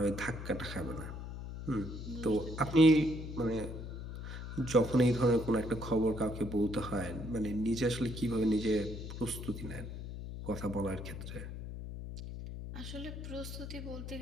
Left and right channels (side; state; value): left; noise; hum, 8 dB below the sound